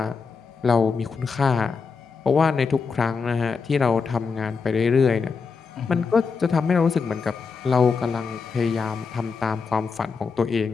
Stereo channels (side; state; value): right; quieter; 5.2 dB